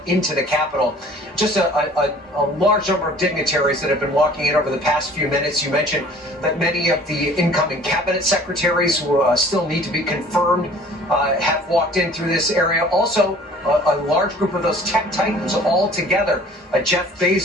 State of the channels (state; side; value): normal; both; correlation 0.50